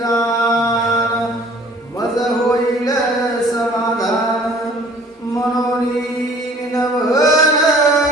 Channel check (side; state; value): both; normal; correlation 0.52